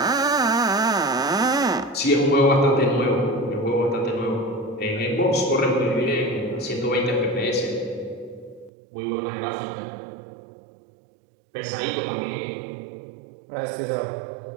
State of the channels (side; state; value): left; drops out; at 8.7 s